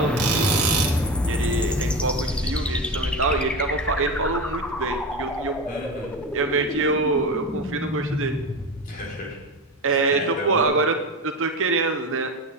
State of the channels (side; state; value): both; normal; correlation 0.23